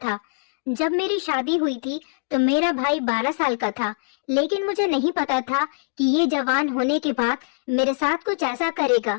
जब मेरी शादी हुई थी तो मेरा भाई 12 साल का था, लेकिन मुझे नहीं पता था कि ये जवान होने के बाद मेरे साथ कुछ ऐसा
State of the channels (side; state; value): right; silent; digital silence